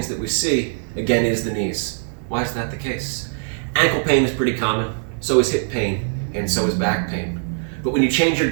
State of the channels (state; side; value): silent; left; 56 dB below the other